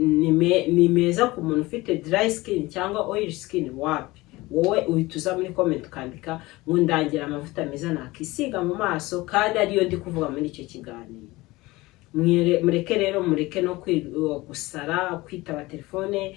meza ku muntu ufite dry skin cyangwa oil skin. Wapi, wowe uhituza muri comment ukandika ngo ndangira amavuta meza nakisiga mu maso, kandi ariyo ndi kuvuga muri icyo kiganiro. Mureke rero, mureke no gusara, kwitaba telefone,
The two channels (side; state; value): right; quieter; 20.5 dB